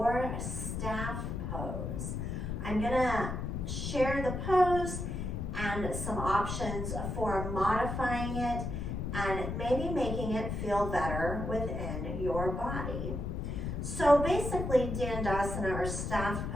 staff pose. I'm gonna share the pose and some options for modifying it and maybe making it feel better within your body. So basically, Dandasana or staff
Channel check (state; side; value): noise; left; rumble, 3 dB below the sound